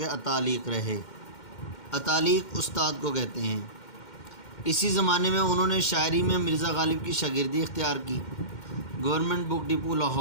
اتالیق رہے۔ اتالیق استاد کو کہتے ہیں۔ اسی زمانے میں انہوں نے شاعری میں مرزا غالب کی شاگردی اختیار کی۔ گورنمنٹ بک ڈپو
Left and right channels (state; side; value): late; right; 2.1 ms